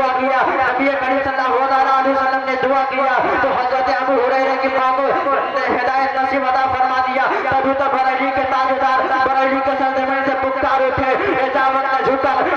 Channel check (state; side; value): identical; both; correlation 1.00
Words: किया, नबी करीम सल्लल्लाहु अलैहि वसल्लम ने दुआ किया तो हजरत अबू हुरैरा की मां को हिदायत नसीब अता फरमा दिया। तभी तो बरेली के ताजदार बरेली के सरजमीन से पुकार उठे, इजाजत ने झुका